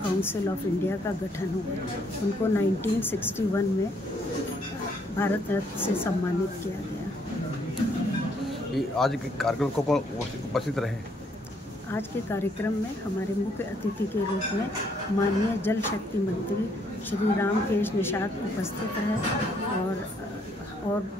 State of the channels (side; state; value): both; normal; correlation 0.69